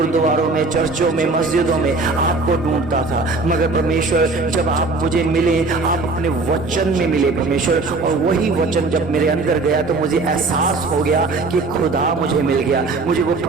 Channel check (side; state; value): left; quieter; 3.6 dB